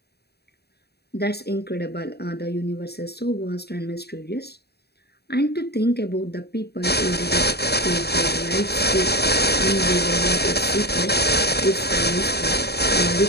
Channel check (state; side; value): late; right; 0.47 ms